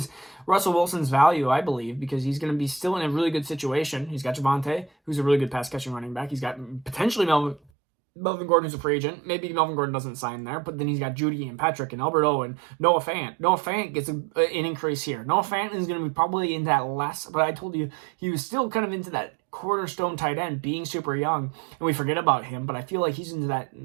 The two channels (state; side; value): drops out; left; at 7.7 s